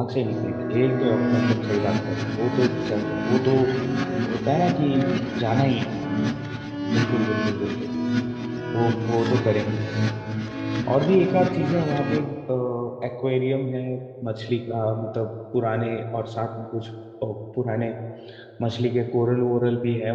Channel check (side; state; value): both; identical; correlation 1.00